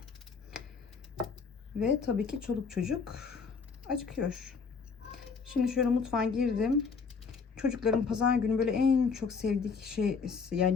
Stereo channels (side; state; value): right; quieter; 5.3 dB